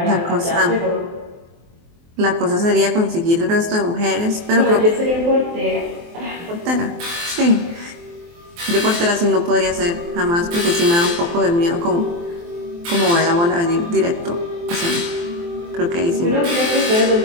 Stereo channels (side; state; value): left; late; 23 ms